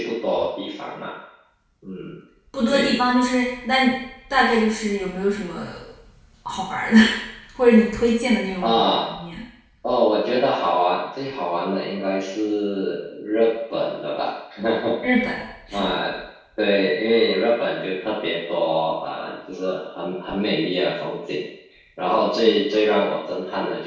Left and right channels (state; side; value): identical; both; correlation 1.00